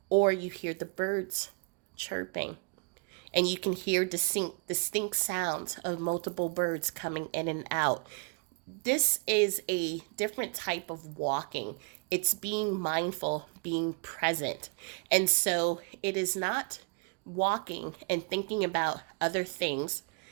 or you hear the birds chirping, and you can hear distinct sounds of multiple birds coming in and out. This is a different type of walking. It's being mindful, being present. And so it is not walking and thinking about other things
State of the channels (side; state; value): left; quieter; 35.0 dB